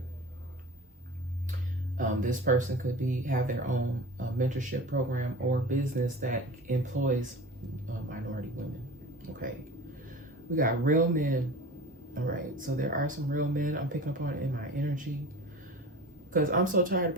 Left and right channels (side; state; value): both; normal; correlation 0.36